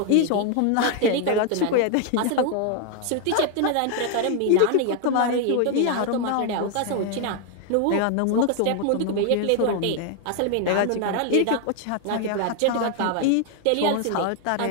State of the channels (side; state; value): both; different; correlation 0.00